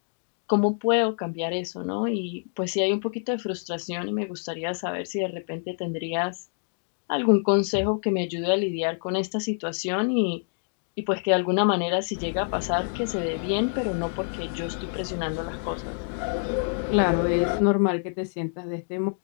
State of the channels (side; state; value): right; silent; 60 dB below the other